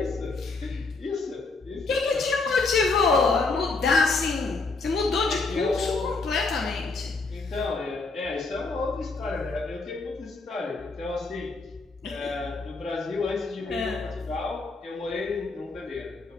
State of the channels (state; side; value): quieter; right; 3.8 dB